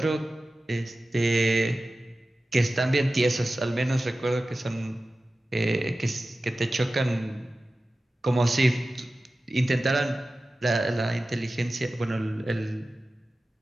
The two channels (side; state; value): both; normal; correlation 0.95